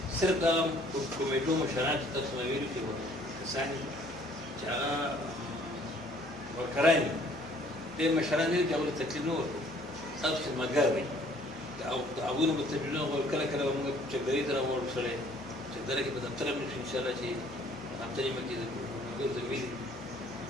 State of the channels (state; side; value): normal; both; correlation 0.58